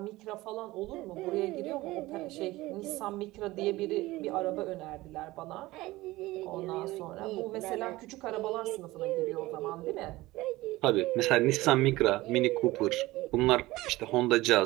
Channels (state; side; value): quieter; left; 18.9 dB